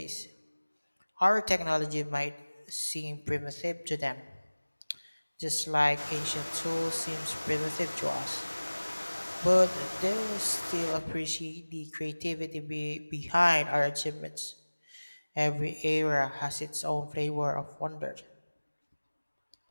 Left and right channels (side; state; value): both; inverted; correlation -1.00